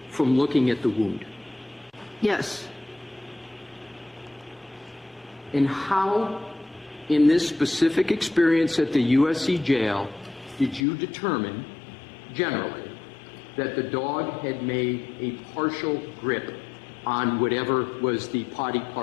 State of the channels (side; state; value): right; drops out; at 10.9 s